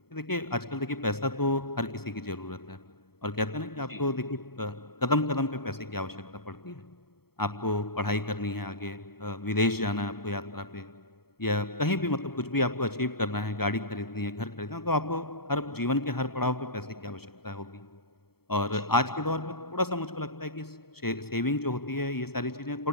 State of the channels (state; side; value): late; right; 0.95 ms